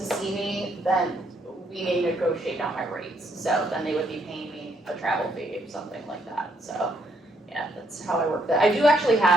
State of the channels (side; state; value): both; normal; correlation 0.73